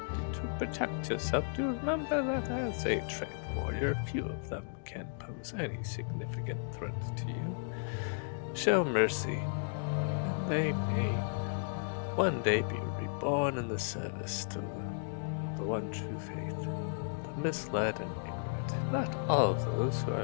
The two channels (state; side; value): silent; right; digital silence